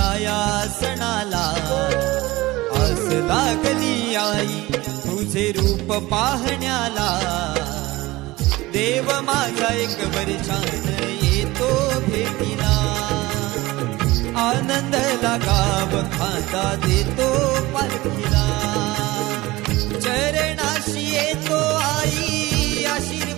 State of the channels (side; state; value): left; quieter; 19.9 dB